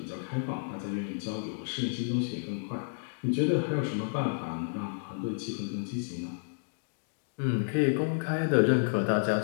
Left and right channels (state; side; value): silent; right; digital silence